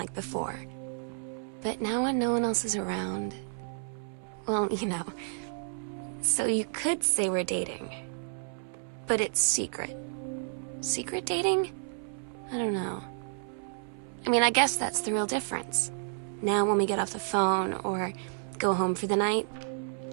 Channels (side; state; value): left; silent; 57 dB below the other